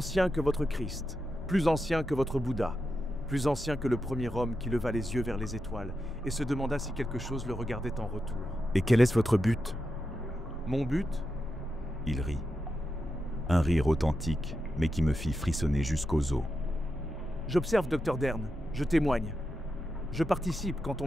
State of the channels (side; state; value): both; normal; correlation 0.88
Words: que votre Christ, plus ancien que votre Bouddha, plus ancien que le premier homme qui leva les yeux vers les étoiles et se demanda si quelque chose le regardait en retour. Et quel est votre but? Mon but? Il rit. Un rire authentique, mais qui me fit frissonner jusqu'aux os. J'observe, Dr Dern, je témoigne. Je participe quand